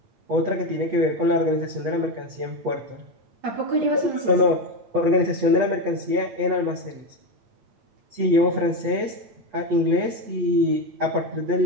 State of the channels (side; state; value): left; late; 8.9 ms